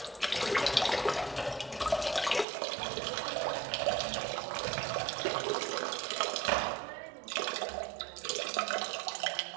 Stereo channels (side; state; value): left; drops out; at 2.5 s